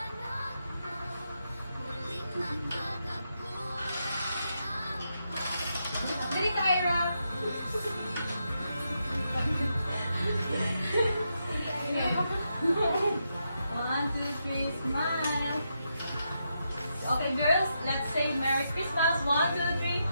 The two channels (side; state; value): both; inverted; correlation -0.83